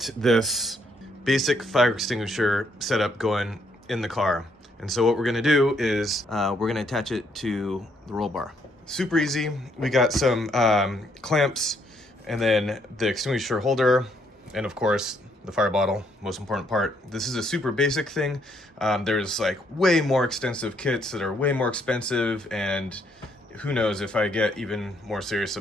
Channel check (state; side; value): normal; both; correlation 0.71